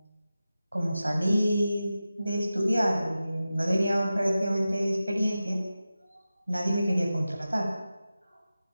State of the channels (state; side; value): inverted; both; correlation -0.94